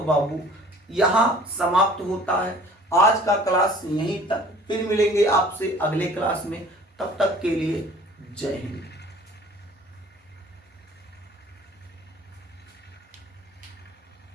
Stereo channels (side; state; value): both; normal; correlation 0.50